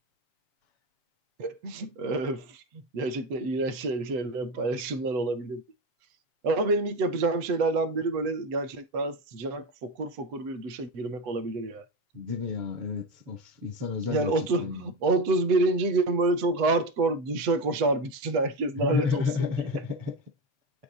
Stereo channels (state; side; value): late; left; 8.0 ms